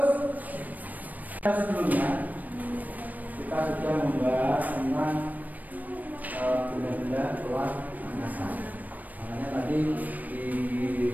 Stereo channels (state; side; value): late; left; 0.081 ms